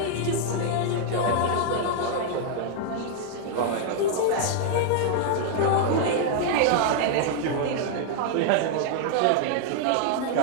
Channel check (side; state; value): both; different; correlation 0.00